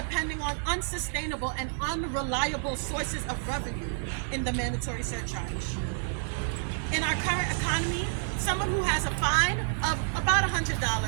on unsustainable and unreliable sources of revenue in the mandatory surcharge? In our current economy, someone who has a fine of about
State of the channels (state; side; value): silent; left; digital silence